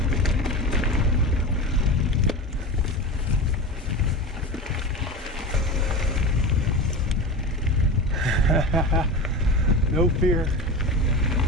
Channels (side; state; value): both; normal; correlation 0.26